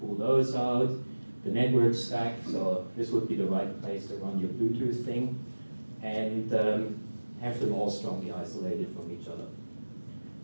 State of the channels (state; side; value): inverted; both; correlation -1.00